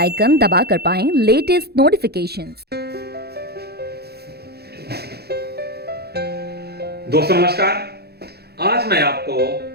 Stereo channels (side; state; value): left; late; 0.47 ms